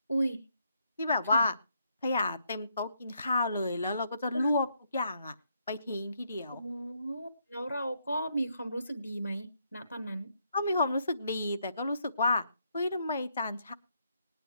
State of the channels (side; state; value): both; inverted; correlation -0.75